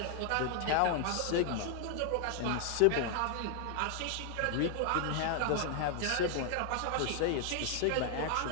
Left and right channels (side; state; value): both; different; correlation 0.00